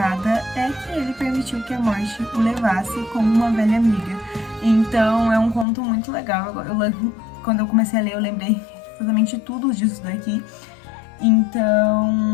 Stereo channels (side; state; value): right; drops out; at 5.7 s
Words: é que ele permitiu que a morte o levasse como uma velha amiga. Então é um conto muito legal. Quando eu comecei a ler, eu lembrei exatamente tudo disso daqui.